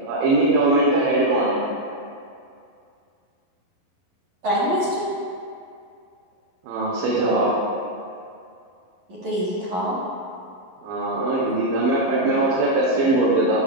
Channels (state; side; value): late; left; 11 ms